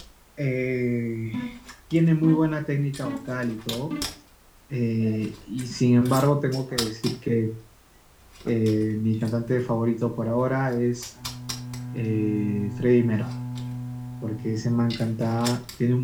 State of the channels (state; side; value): identical; both; correlation 1.00